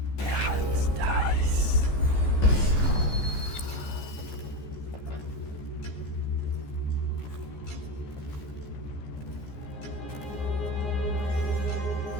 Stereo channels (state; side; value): late; right; 14 ms